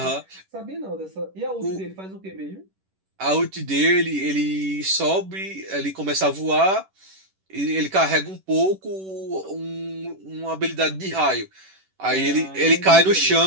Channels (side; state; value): left; late; 11 ms